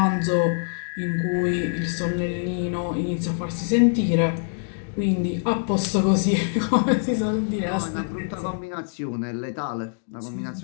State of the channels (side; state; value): right; silent; digital silence